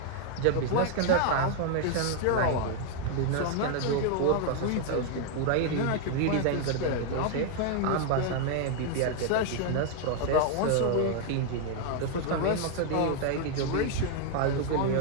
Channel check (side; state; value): both; different; correlation 0.00